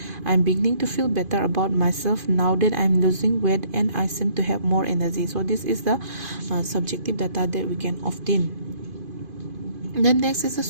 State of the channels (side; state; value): left; late; 2.5 ms